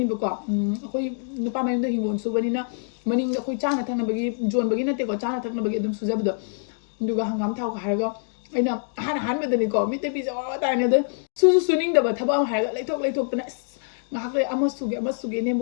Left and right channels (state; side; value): silent; right; digital silence